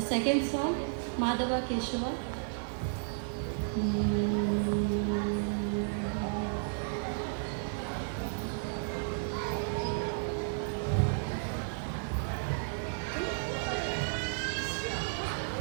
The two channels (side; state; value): left; silent; digital silence